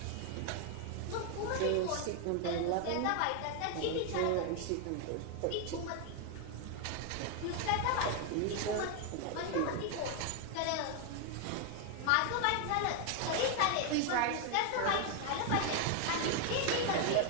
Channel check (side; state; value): both; different; correlation 0.01